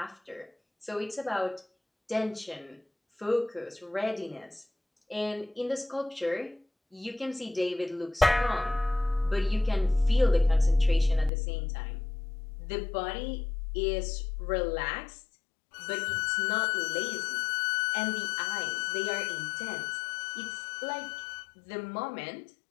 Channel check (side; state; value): right; drops out; at 11.3 s